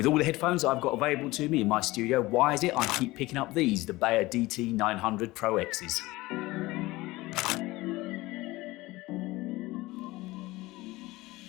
all the headphones I've got available to me in my studio, why is it I keep picking up these, the Beyerdynamic DT 900 Pro X's?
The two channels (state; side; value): quieter; right; 19.9 dB